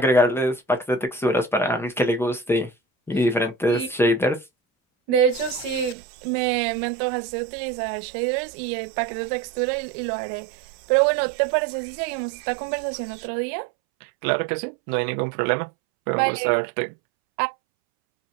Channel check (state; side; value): drops out; left; at 6.0 s